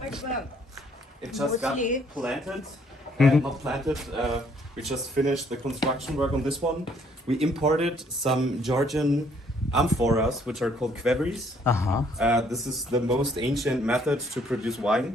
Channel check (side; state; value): both; normal; correlation 0.65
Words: it just got Mostly- planted. Not planted. We just finished the construction work on this one. We imported some Georgian amphoras, which are called quevries. Uh-huh. This is the most ancient method to produce